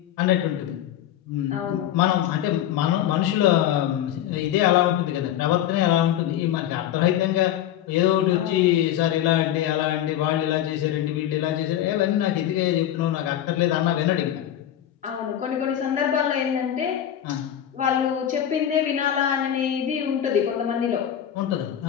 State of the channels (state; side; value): quieter; right; 11.1 dB